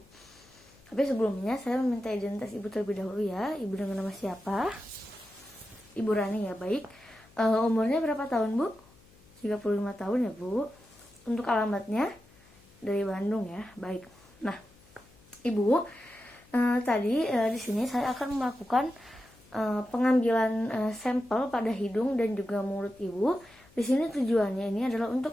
Tapi sebelumnya, saya meminta identitas Ibu terlebih dahulu ya. Ibu dengan nama siapa? Ibu Rani ya, baik. Umurnya berapa tahun, Bu? 35 tahun ya, Bu. Untuk alamatnya dari Bandung ya, baik. Nah, Ibu, tadi di sini saya akan melakukan pengambilan sampel pada hidung dan juga mulut Ibu. Di sini tujuannya ini adalah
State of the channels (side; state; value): left; noise; hum, 27 dB below the sound